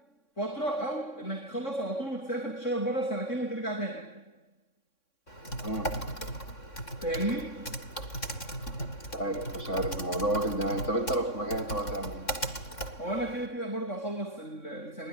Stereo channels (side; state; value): right; late; 3.6 ms